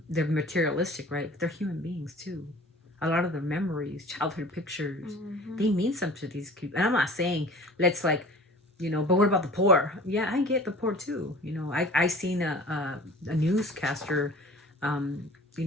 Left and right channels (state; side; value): normal; both; correlation 0.44